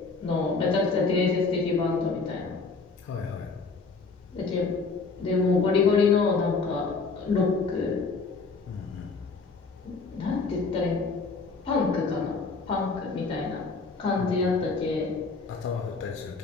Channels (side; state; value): right; quieter; 4.3 dB